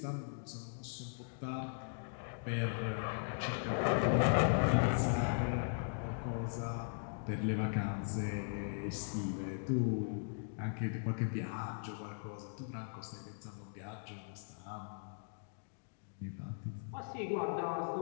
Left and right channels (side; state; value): right; silent; digital silence